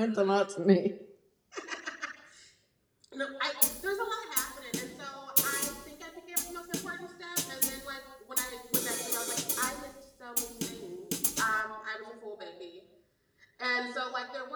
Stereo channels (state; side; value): identical; both; correlation 1.00